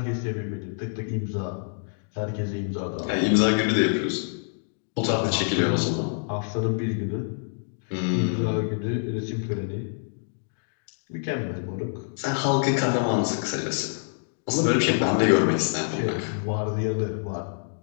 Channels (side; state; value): right; silent; digital silence